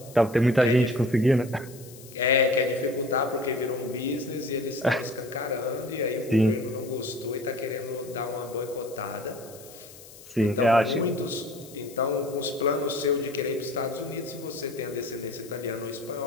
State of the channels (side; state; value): left; noise; hiss, 19 dB below the sound